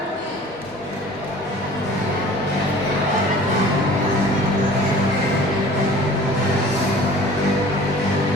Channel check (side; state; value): both; normal; correlation 0.46